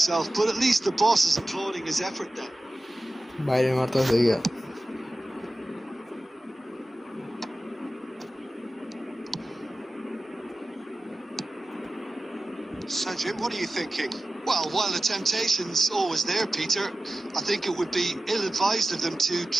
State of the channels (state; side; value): normal; both; correlation 0.95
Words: but at least the boss is applauding his effort then. বাইরে মারতেছে গিয়া So, Jim, what are you thinking? Well, while the temptation's always there, Peter, I think it would be ill-advised of them to